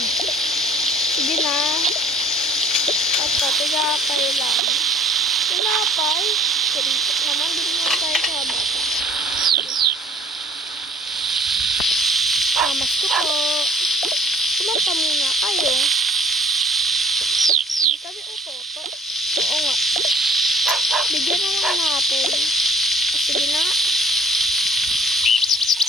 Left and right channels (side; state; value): both; normal; correlation 0.52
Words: Sige na. At patigapay lang. Tinapay. Karitok naman. Din naman tayo sa bata. Mamas ko po. Kumanta muna kayo. Hindi kami utoto. Oo nga. Bigyan na lang natin. Sige na.